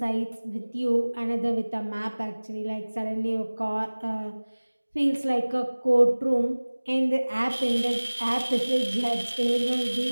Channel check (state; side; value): inverted; both; correlation -1.00